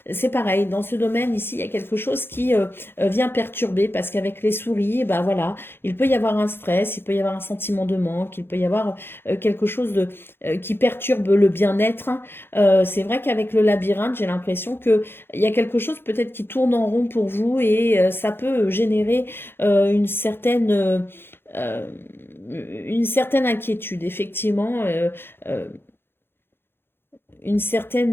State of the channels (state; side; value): late; right; 0.11 ms